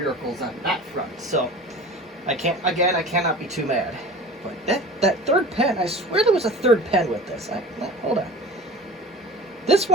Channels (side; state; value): both; normal; correlation 0.39